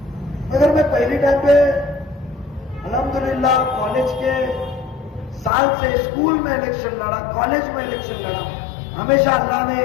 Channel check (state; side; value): drops out; right; at 5.5 s